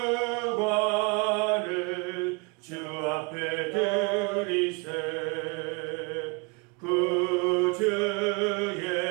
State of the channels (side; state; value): left; quieter; 30.8 dB